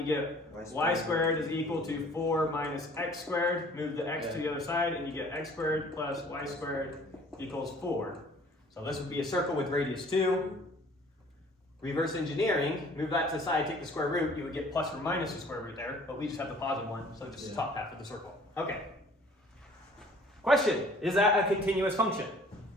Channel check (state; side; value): normal; both; correlation 0.53